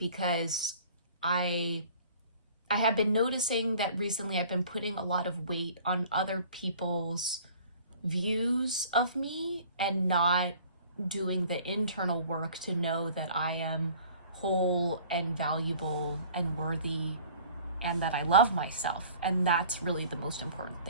I have been noticing that recently I've been putting a lot of weight on other people's views of me and not doing the internal work to know that I am whole and valuable and worthy and that I love myself. And that's really the most important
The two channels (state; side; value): inverted; both; correlation -0.49